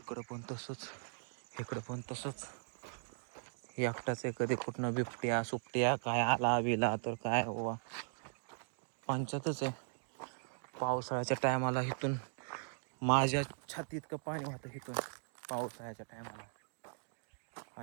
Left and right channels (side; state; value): left; silent; digital silence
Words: पण तसंच, इकडं पण तसंच. एकटाच आहे. कधी कुठनं बिबट्या सुपट्या काय आला बिला तर काय बाबा पंचायतच आहे. पावसाळ्याच्या टायमाला इथून माझ्या छातीत इतकं पाणी होतं इथून पावसाळ्याच्या टायमाला.